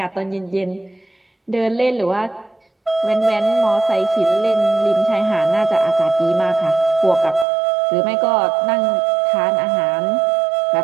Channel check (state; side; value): drops out; left; at 7.5 s